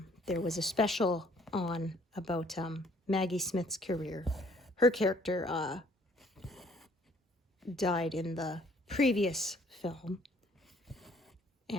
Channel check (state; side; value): normal; both; correlation 0.61